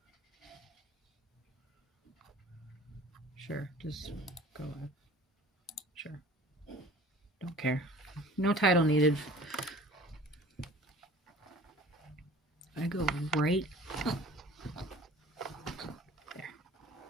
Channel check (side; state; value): both; normal; correlation 0.46